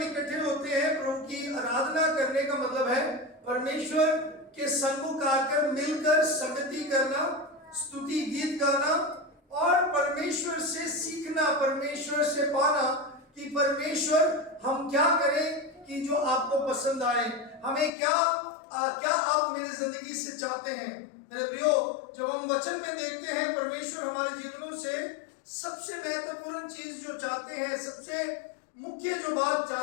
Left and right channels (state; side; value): drops out; right; at 17.9 s